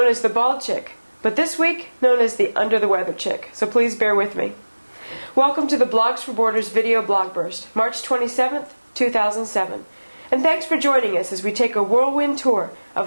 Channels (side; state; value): both; inverted; correlation -1.00